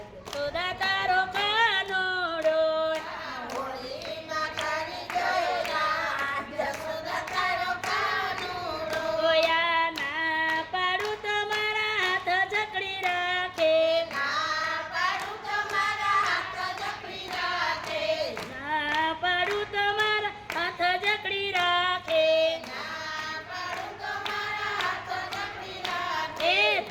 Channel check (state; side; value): identical; both; correlation 1.00